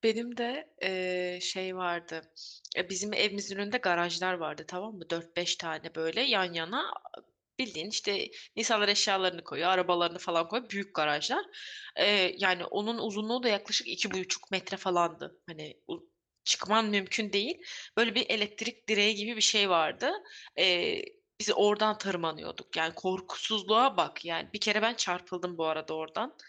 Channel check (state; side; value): identical; both; correlation 1.00